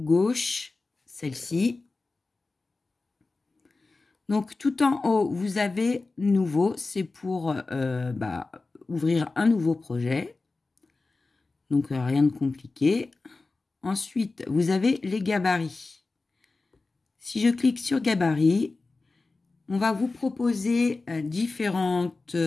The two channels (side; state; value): right; quieter; 3.6 dB